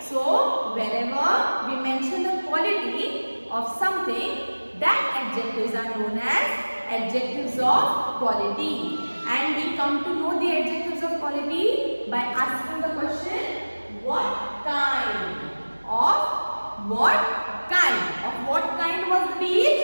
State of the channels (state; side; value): inverted; both; correlation -1.00